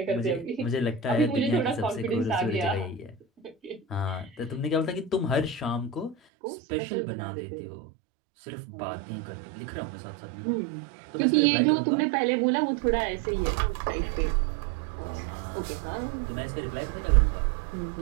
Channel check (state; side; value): drops out; left; at 6.2 s